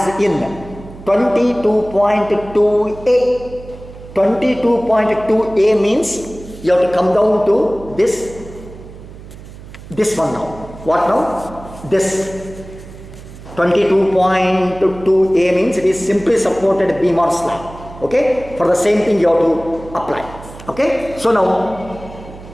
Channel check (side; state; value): right; noise; hum, 16 dB below the sound